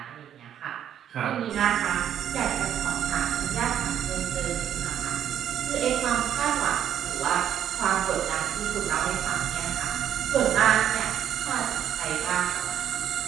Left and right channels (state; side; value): quieter; left; 9.9 dB